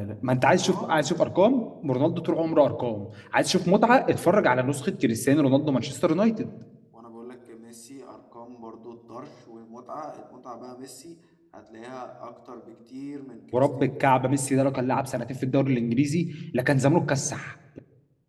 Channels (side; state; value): both; identical; correlation 1.00